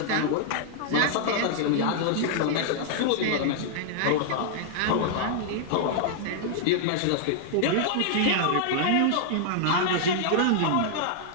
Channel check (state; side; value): different; both; correlation -0.01